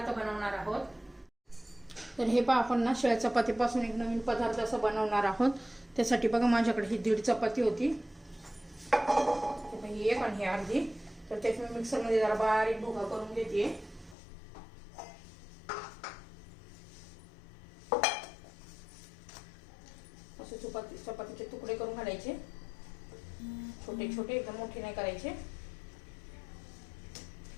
बनवणार आहोत. तर हे पहा, आपण ना शिळ्या चपातीपासून एक नवीन पदार्थ असं बनवणार आहोत. त्यासाठी बघा, माझ्याकडे ही 1.5 चपाती होती, ही एक आणि ही अर्धी. तर त्यात मी मिक्सरमध्ये जरा बारीक भुगा करून घेते. असे चपातीचे तुकडे करून घालायचे, छोटे छोटे, एकदम मोठे नाही करायचे.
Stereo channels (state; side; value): drops out; right; at 14.2 s